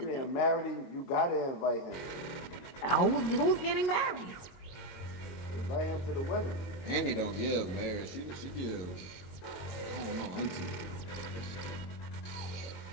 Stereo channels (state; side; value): late; right; 22 ms